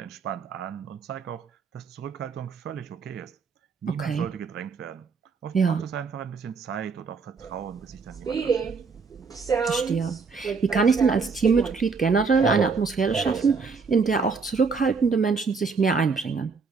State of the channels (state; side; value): quieter; left; 4.9 dB